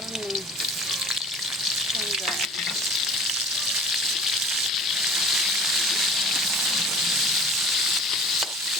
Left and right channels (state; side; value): normal; both; correlation 0.43